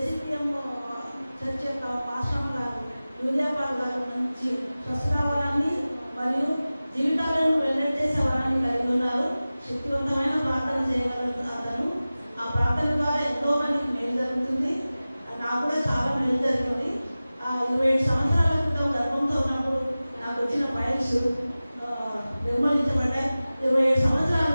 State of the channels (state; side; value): inverted; both; correlation -0.97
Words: చర్చ్ యొక్క పాస్టర్ గారు యూరియాపాల్ గారు నుంచి స్వస్థరావరాన్ని మరియు జీవితాలను వెల్లడిచేసే వరాన్ని కలిగి ఉన్నారు. శక్తివంతమైన ప్రార్థన చేయగలరు అతను. ఆ ప్రార్థన ద్వారా ఎంతో మందికి మేలు జరుగుతుంది. నాకు కూడా చాలా మేలు జరిగింది. 27 సంవత్సరాల క్రితం గర్భంతో ఉన్నప్పుడు నాకు వచ్చిన ఫైల్స్ నిర్మూలించబడ్డాయి. 27